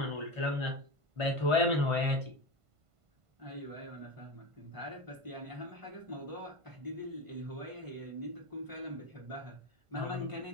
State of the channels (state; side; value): late; left; 1.5 ms